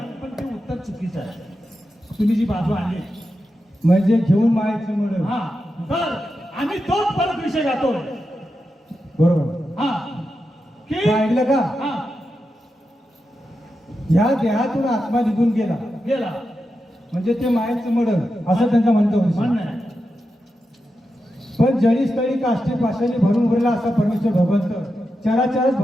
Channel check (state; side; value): normal; both; correlation 0.89